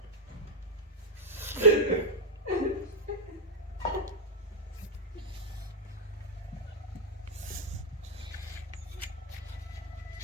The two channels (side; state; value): both; normal; correlation -0.04